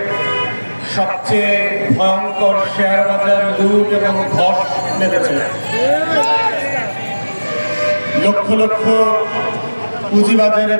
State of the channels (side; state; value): both; inverted; correlation -1.00